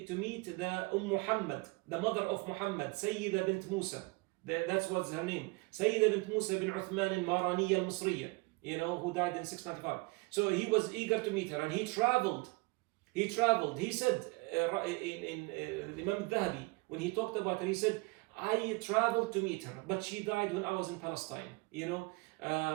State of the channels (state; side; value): quieter; left; 26.4 dB